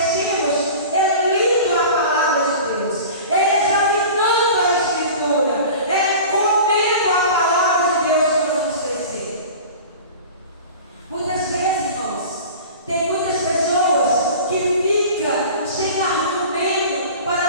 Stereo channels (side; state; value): both; inverted; correlation -0.38